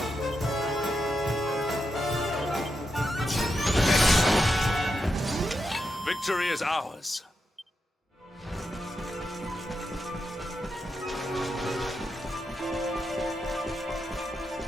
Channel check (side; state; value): both; normal; correlation 0.86